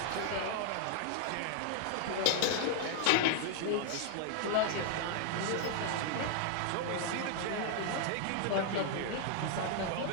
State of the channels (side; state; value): both; different; correlation 0.00